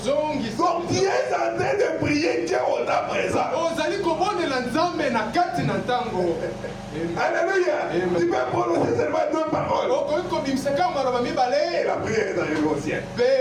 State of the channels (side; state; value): both; identical; correlation 1.00